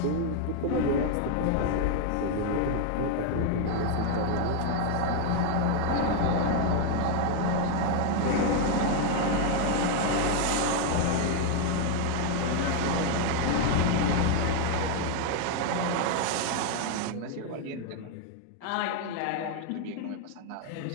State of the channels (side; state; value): both; different; correlation 0.01